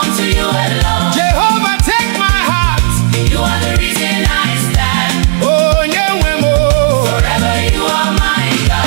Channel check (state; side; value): silent; left; 62 dB below the other